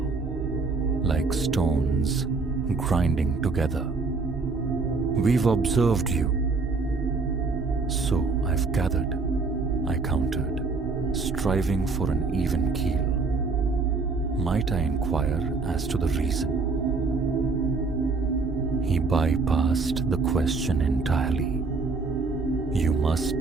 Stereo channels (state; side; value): quieter; left; 4.2 dB